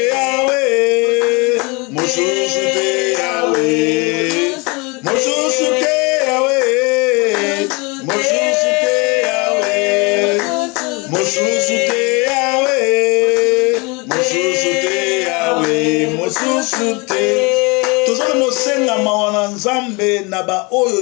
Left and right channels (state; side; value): quieter; right; 28.2 dB